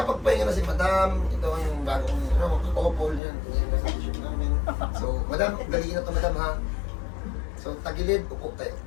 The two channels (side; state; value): right; drops out; at 3.2 s